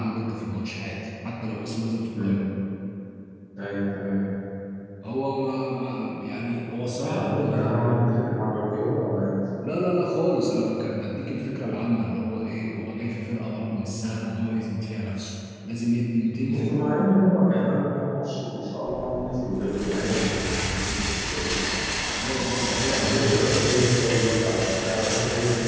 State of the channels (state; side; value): identical; both; correlation 1.00